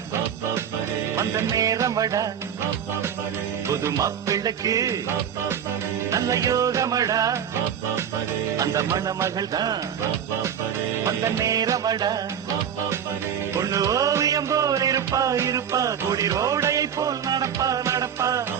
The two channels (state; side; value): quieter; left; 8.5 dB